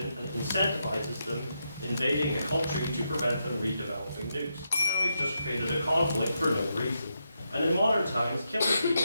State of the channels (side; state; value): both; inverted; correlation -0.84